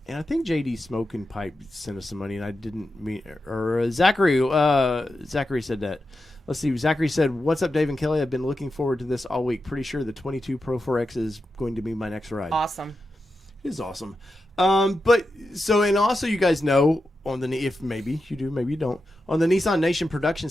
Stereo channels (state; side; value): normal; both; correlation 0.89